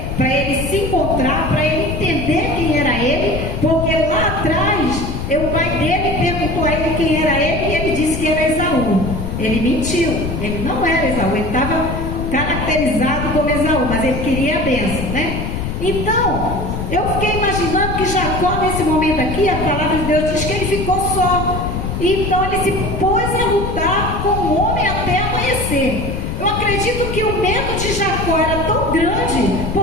para ele se encontrar, para ele entender quem era ele, porque lá atrás o pai dele perguntou a ele quem era ele, e ele disse que era Esaú. Ele mentiu, ele não era Esaú, ele estava caracterizado como Esaú, mas ele queria a bênção, né? Então, eu fiquei imaginando que Jacó, nesse momento aqui, a palavra de Deus diz que ele ficou só. Então ele se pôs a lutar com o homem até amanhecer. Eu acredito que o medo de Jacó era tão grande,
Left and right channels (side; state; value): left; noise; rumble, 4 dB below the sound